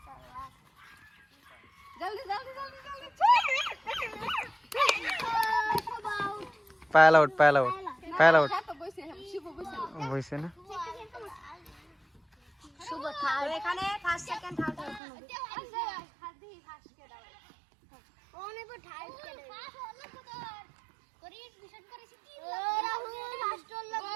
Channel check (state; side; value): drops out; left; at 15.0 s